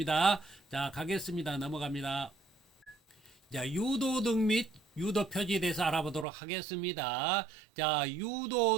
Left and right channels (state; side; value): drops out; left; at 6.2 s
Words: 자, 가겠습니다. 넘어갑니다. 자, 유도등 및 유도 표지에 대해서 알아보도록 하겠습니다. 자,